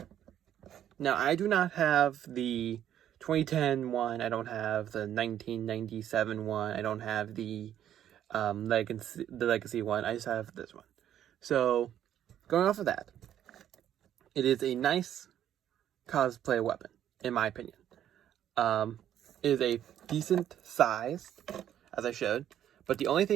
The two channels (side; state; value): left; quieter; 10.7 dB